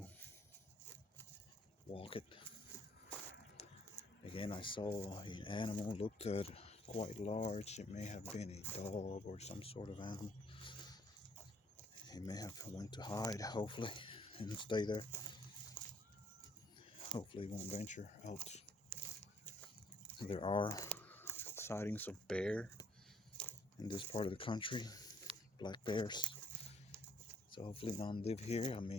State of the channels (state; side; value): normal; both; correlation 0.65